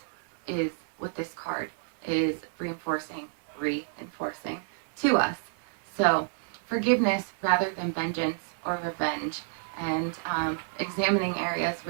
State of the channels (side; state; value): left; silent; 58 dB below the other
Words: is what this card is reinforcing to us. So forgiveness rather than vengeance or revenge, and examining areas